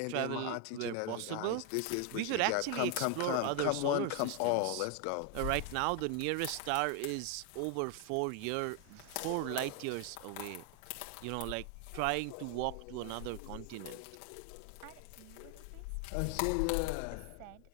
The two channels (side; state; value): both; different; correlation 0.01